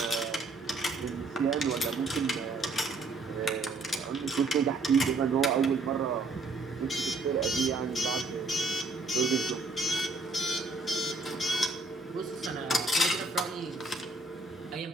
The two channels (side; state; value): left; quieter; 3.4 dB